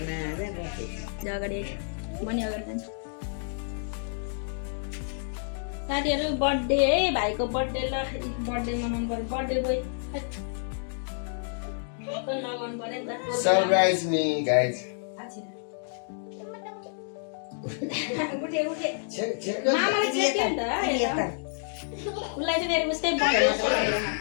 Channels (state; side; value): silent; right; digital silence